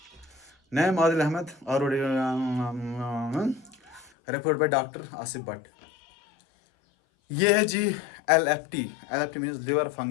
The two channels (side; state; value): right; drops out; at 4.1 s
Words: नैम आदिल अहमद और report by doctor Asif Bhatt. ये है जी LFT means liver